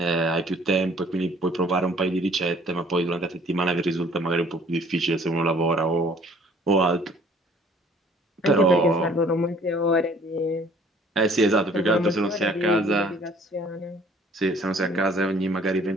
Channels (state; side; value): normal; both; correlation 0.55